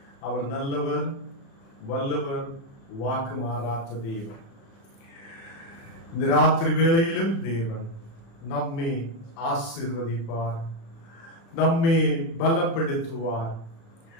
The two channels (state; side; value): late; right; 36 ms